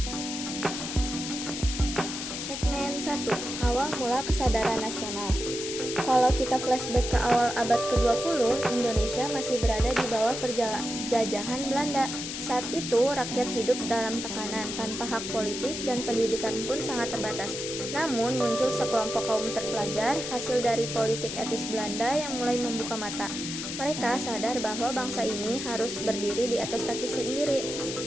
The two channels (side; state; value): left; noise; hiss, 6 dB below the sound